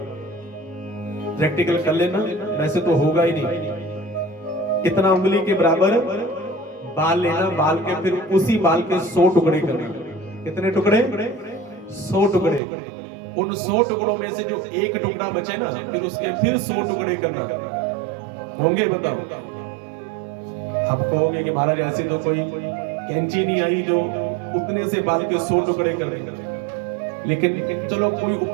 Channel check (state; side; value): drops out; left; at 12.6 s